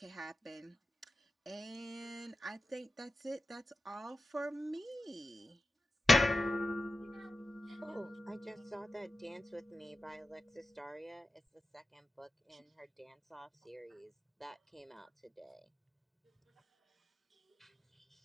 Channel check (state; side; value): normal; both; correlation 0.93